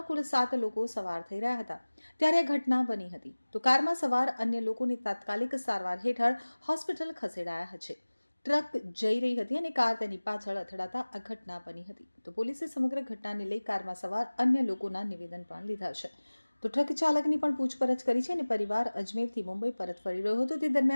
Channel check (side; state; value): both; inverted; correlation -1.00